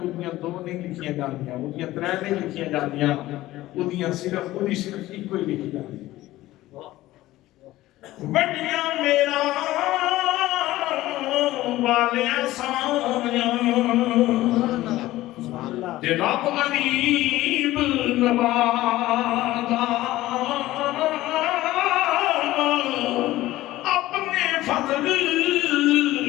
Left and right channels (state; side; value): quieter; right; 16.4 dB